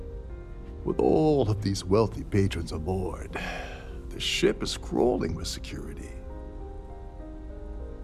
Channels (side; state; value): both; identical; correlation 1.00